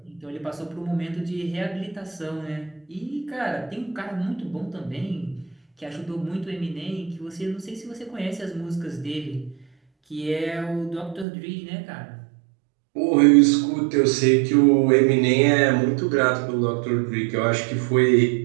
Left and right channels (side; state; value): left; drops out; at 11.2 s